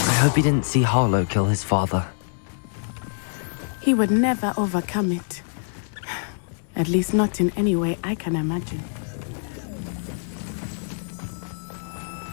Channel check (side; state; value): right; silent; 62 dB below the other